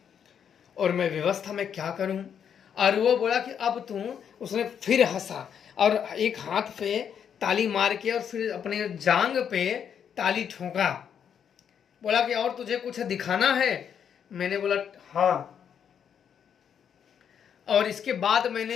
और मैं व्यवस्था में क्या करूं। और वो बोला कि अब तू, उसने फिर हंसा और एक हाथ पे ताली मार के और फिर अपने जांग पे ताली ठोका, बोला कि और तुझे कुछ दिखाना है। मैंने बोला हाँ, और इसके बाद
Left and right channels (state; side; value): quieter; right; 8.1 dB